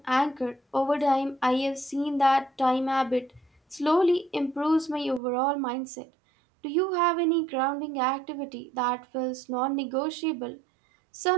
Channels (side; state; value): left; drops out; at 5.2 s